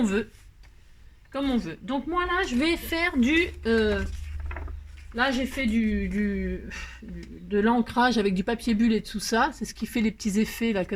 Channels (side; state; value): both; identical; correlation 1.00